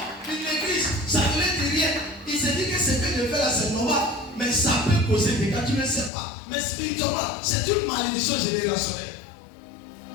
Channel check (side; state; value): right; drops out; at 6.1 s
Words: une église, ça ne leur dit rien. Ils se disent que ce que je fais là, c'est normal. Mais ça peut causer des cas, tu ne sais pas. Mais spirituellement, c'est une malédiction générationnelle.